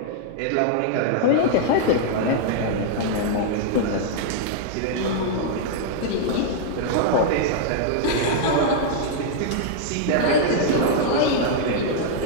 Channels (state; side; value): different; both; correlation -0.01